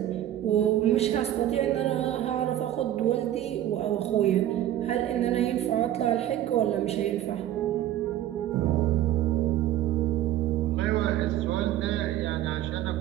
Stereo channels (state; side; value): quieter; left; 12.5 dB